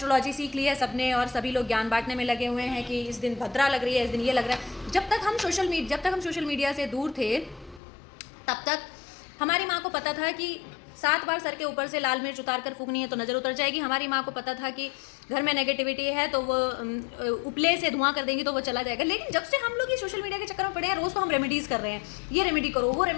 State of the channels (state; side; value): drops out; right; at 7.8 s